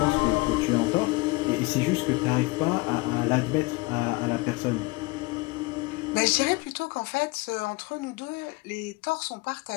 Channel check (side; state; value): right; quieter; 23.7 dB